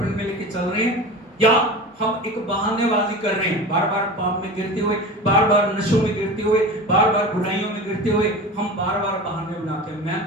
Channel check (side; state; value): both; normal; correlation 0.32